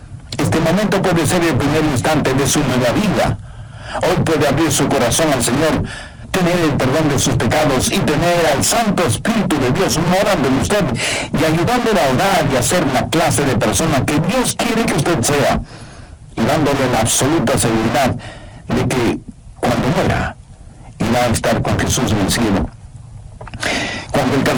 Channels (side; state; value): both; identical; correlation 1.00